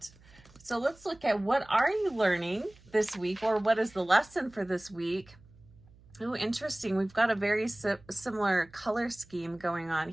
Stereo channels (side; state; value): right; noise; hum, 26 dB below the sound